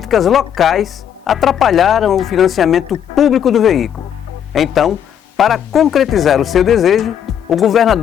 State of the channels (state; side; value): quieter; right; 9.2 dB